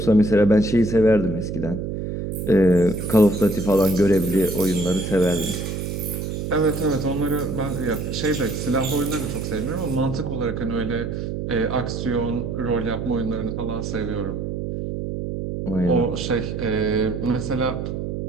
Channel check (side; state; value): right; noise; hum, 4 dB below the sound